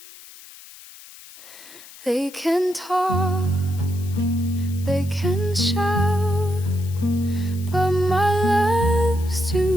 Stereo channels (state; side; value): noise; left; hiss, 19 dB below the sound